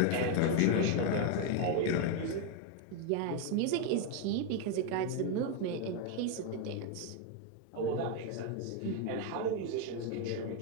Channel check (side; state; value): both; different; correlation 0.01